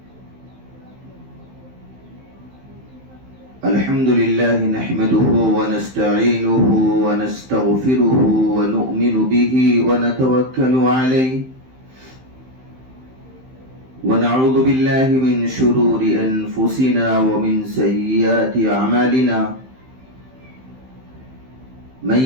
نحمده ونستعينه ونستغفره ونؤمن به ونتوكل عليه ونعوذ بالله من شرور أنفسنا ومن سيئات أعمالنا من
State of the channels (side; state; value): left; late; 15 ms